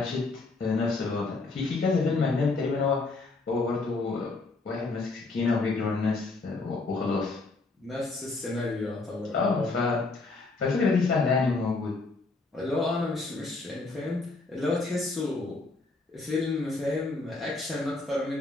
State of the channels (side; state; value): right; quieter; 3.6 dB